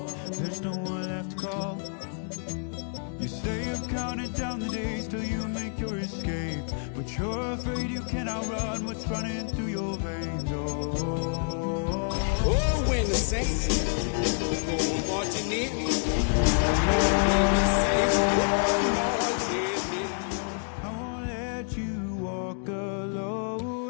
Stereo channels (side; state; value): right; silent; 56 dB below the other